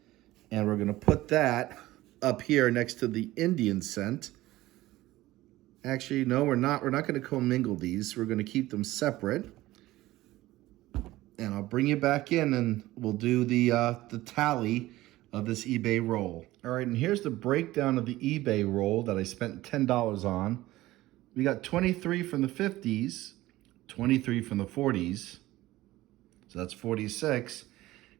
and we're going to put that up here next to the Indian cent. Actually, no, we're not. We're not going to commingle these. We're going to keep them separate. And I'll bring you back in, and we'll do the tally of this eBay roll. All right, and here's the breakdown of the eBay roll that I spent $10 on. We got 23 from the 50s, 23 from the 40s, so that's 46,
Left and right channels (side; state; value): left; quieter; 17.1 dB